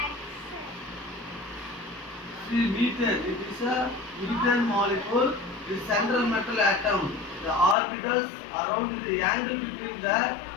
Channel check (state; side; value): drops out; right; at 7.8 s